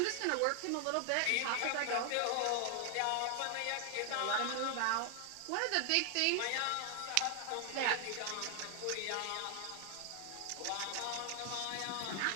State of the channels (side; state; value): both; different; correlation 0.00